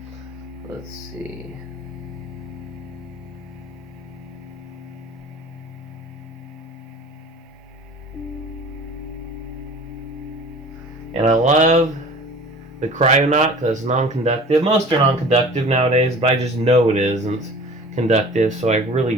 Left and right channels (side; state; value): both; normal; correlation 0.43